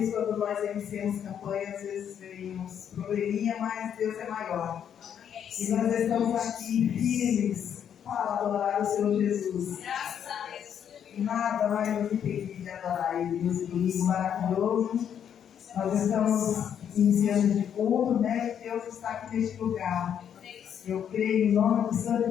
quando nós iniciamos campanha, às vezes vemos probleminha, mas Deus é maior. E nós estamos aqui firmes para adorar o Senhor Jesus. Graças a Deus. Nada vai nos impedir de adorar Ele nesse domingo maravilhoso. Nós estamos iniciando de culto, né? Deus está aqui neste lugar. Eu creio em nome do Santo e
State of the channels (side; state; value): right; quieter; 8.8 dB